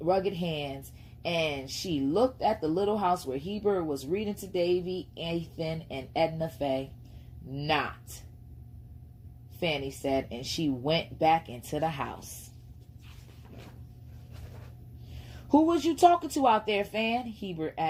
hands, and she looked at the little house where Heber was reading to Davy, Ethan, and Edna Faye. "Not," Fanny said, and she went back into the house. "Who was you talking to out there, Fan?" Heber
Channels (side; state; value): both; identical; correlation 1.00